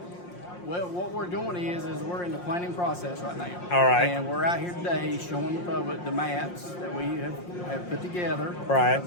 what we're doing is we're in the planning process right now. All right. And we're out here today showing the public the maps that we have put together. Right.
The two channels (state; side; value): late; right; 5.6 ms